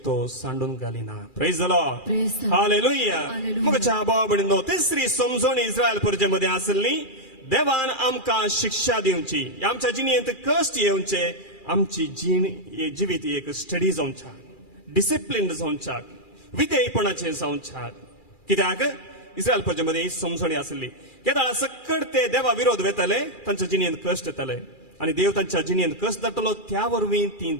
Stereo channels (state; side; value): late; right; 2.4 ms